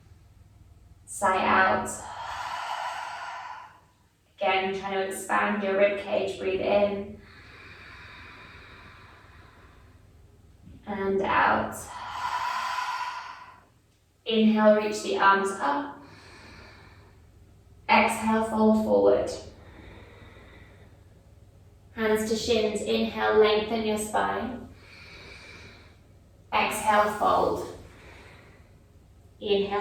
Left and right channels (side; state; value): both; identical; correlation 1.00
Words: Sigh out. Again, trying to expand your rib cage. Breathe in. And out. Inhale, reach the arms up. Exhale, fold forward. Hands to shins. Inhale, lengthen your spine. Exhale, fold.